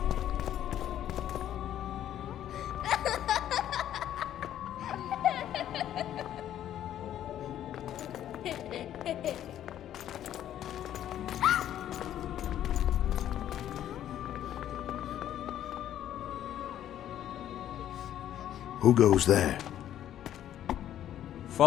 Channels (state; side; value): quieter; right; 11.3 dB